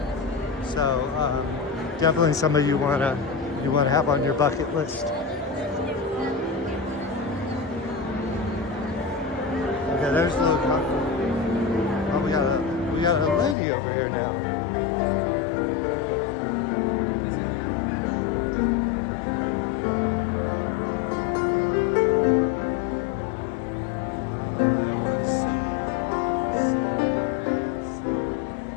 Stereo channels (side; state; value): right; drops out; at 13.6 s